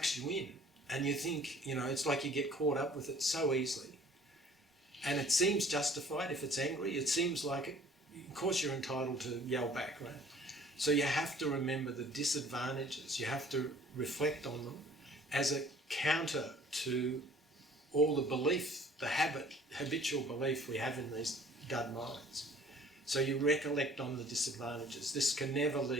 you in, and you think, it's like you get caught up with it so easily. And it seems justified if it's angry. It seems like, of course you're entitled to yell back, right? So you have to remember the disadvantages. You have to reflect on them as a counter to all the belief, the habitual belief we have in these dud minds. So you recollect on the disadvantages. This can never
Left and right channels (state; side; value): normal; both; correlation 0.53